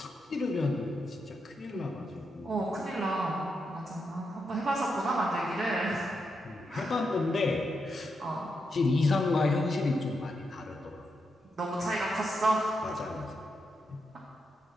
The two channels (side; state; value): both; normal; correlation 0.84